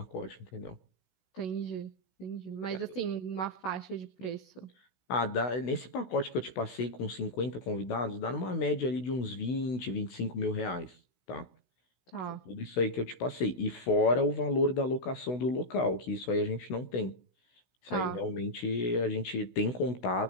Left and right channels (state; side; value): late; right; 16 ms